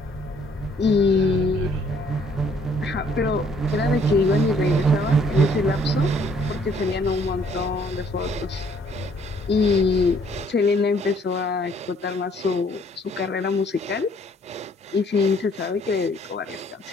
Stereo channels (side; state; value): both; normal; correlation 0.63